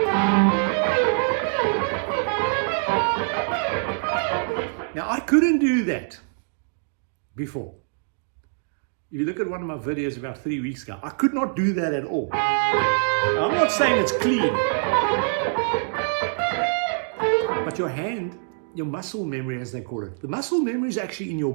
Now, I couldn't do that before. If you look at one of my videos about 3 weeks ago, I could not do that at all. Now, I'm not saying it's clean, but your hand, your muscle memory, as they call it, the muscle memory is actually in your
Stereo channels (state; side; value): silent; left; digital silence